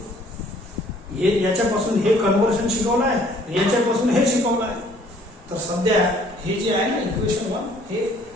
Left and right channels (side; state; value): both; normal; correlation 0.58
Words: हे याच्यापासून हे कन्व्हर्शन शिकवलं आहे, याच्यापासून हे शिकवलं आहे. तर सध्या हे जे आहे ना इक्वेशन 1